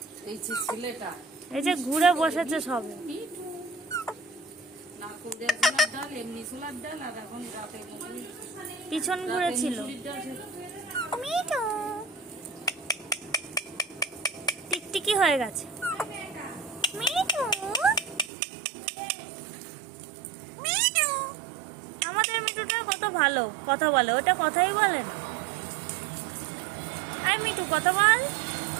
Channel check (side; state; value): left; drops out; at 18.3 s